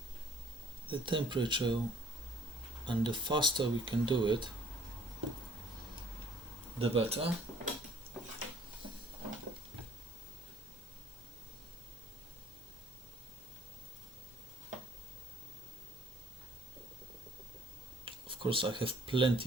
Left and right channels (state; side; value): normal; both; correlation 0.59